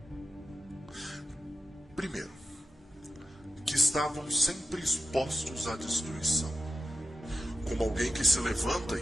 Primeiro, que estavam sempre expostos à destruição. Como alguém que se levanta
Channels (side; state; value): both; normal; correlation 0.92